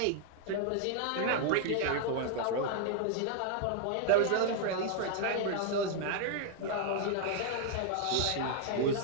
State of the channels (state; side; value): different; both; correlation 0.00